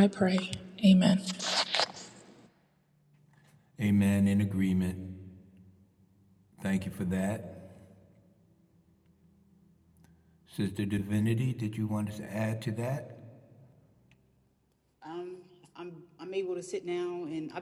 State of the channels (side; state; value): both; identical; correlation 1.00